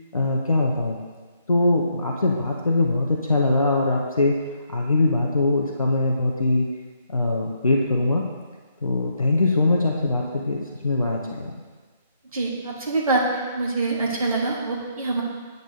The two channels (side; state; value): both; inverted; correlation -0.75